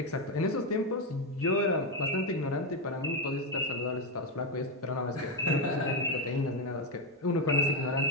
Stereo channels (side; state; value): both; normal; correlation 0.07